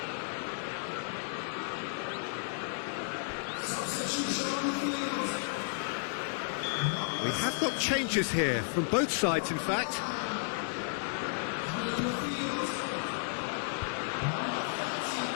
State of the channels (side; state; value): right; silent; digital silence